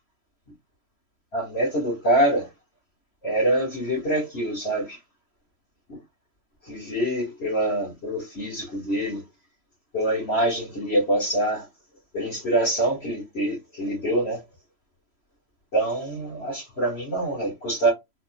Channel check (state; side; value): late; right; 3.0 ms